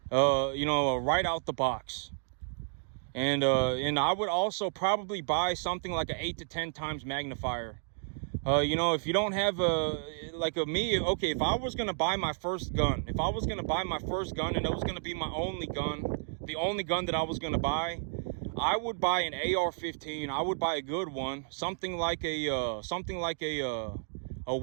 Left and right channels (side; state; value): left; silent; digital silence